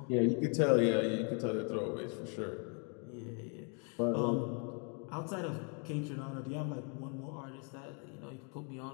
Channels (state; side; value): quieter; right; 38.7 dB